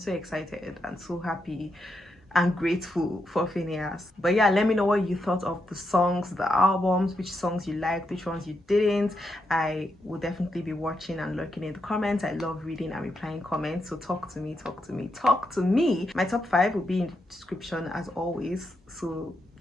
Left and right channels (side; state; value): both; normal; correlation 0.83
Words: excited and so happy. and grateful for Finneas. But yeah, let me know what you thought of the songs, the albums, which songs you liked, which ones you didn't. I will definitely be watching and lurking in the comments. I love reading and replying comments, so talk to me. My top 5 will be in the description as always, so